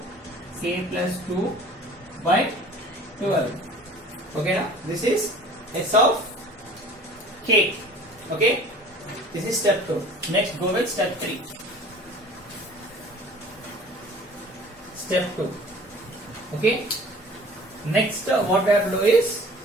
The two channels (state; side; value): normal; both; correlation 0.45